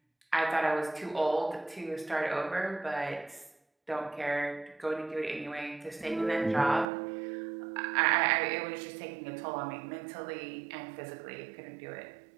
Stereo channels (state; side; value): drops out; left; at 6.9 s